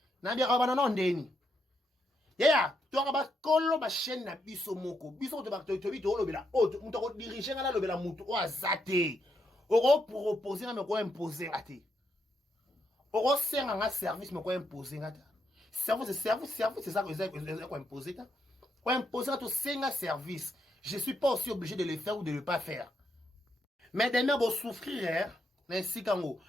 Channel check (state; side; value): normal; both; correlation 0.79